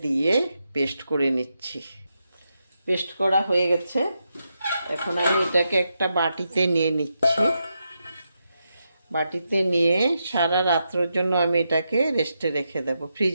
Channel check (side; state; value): both; inverted; correlation -0.85